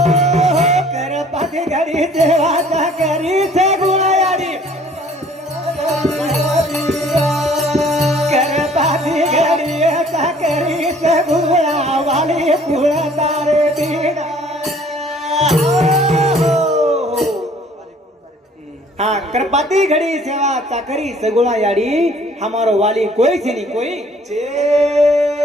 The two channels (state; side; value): normal; both; correlation 0.56